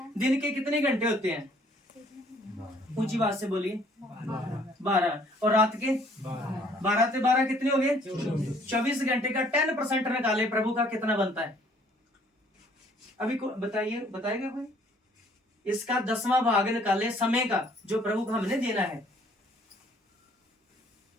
दिन के कितने घंटे होते हैं, ऊंची बात से बोलिए, 12, और रात के 12 से 12 कितने हो गए, 24 घंटे का 10% निकाले, प्रभु का कितना बनता है, अभी बताइएगा कोई, इसका 10वां भाग निकाले समय का जो प्रभु को हमने देना है।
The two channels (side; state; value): both; normal; correlation 0.60